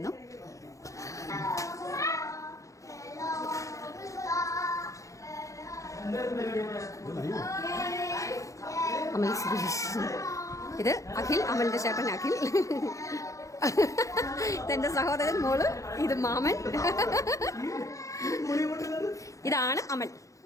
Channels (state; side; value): late; right; 0.15 ms